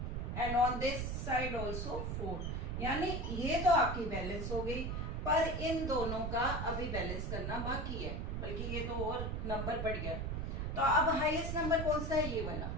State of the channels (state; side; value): noise; right; rumble, 2 dB below the sound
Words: and on this side also 4, यानी ये तो आपकी बैलेंस हो गई, पर इन दोनों का अभी बैलेंस करना बाकी है, बल्कि ये तो और नंबर बढ़ गया। तो अब हाईएस्ट नंबर कौन सा है, ये वाला,